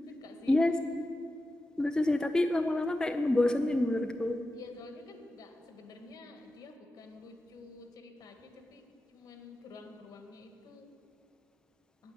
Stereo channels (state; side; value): normal; both; correlation 0.92